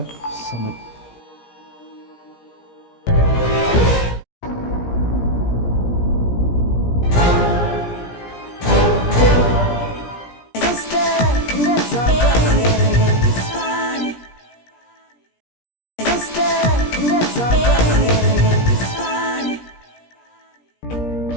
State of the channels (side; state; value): right; late; 17 ms